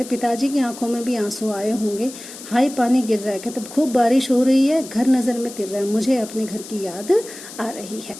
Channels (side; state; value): left; noise; hiss, 14 dB below the sound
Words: पिताजी की आंखों में भी आंसू आए होंगे, हाय पानी गिर रहा है, कहते खूब बारिश हो रही है, घर नज़र में तिर रहा है, मुझे अपने घर की याद आ रही है।